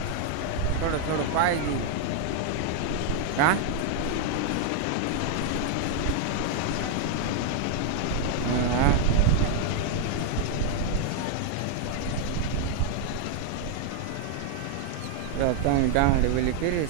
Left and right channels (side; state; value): both; different; correlation 0.00